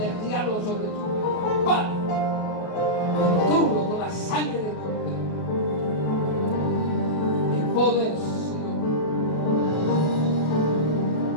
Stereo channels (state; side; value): late; right; 33 ms